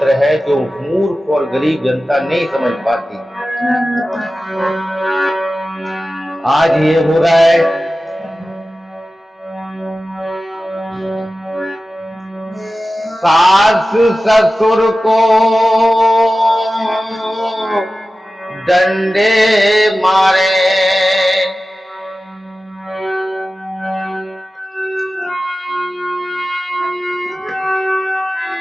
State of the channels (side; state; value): both; normal; correlation 0.95